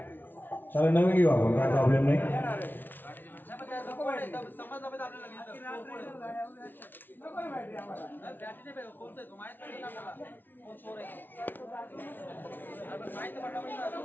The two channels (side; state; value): right; late; 0.092 ms